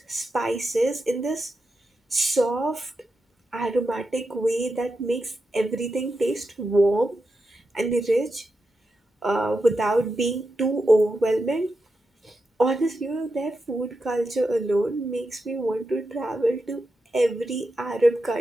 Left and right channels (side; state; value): both; normal; correlation 0.88